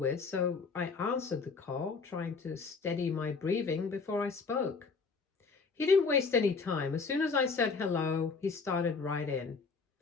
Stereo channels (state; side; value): quieter; right; 4.7 dB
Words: so I answered the call, trying to steady my breathing before I spoke. He didn't waste any time. As soon as I said hello, he started right in.